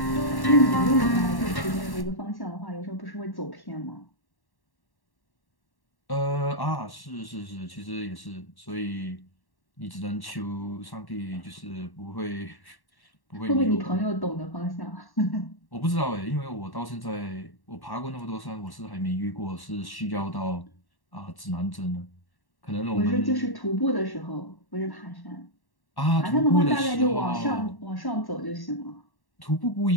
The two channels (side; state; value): right; late; 1.1 ms